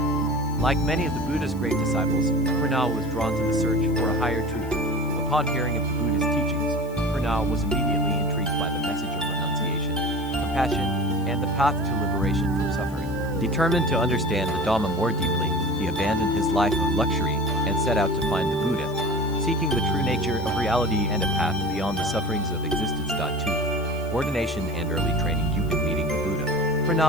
Like many of the Buddha's great disciples, Purna was drawn to the search for a higher truth. Upon hearing of the Buddha's teachings, Purna was immediately intrigued by the message of renunciation, compassion, and the path to liberation from suffering. Determined to understand the Dhamma more deeply, he abandoned his life of luxury and set out to find the Buddha, seeking the true nature of reality and a path beyond the sufferings of existence. 2. Ordination and early training. Meeting the Buddha,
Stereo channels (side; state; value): left; noise; hiss, 23 dB below the sound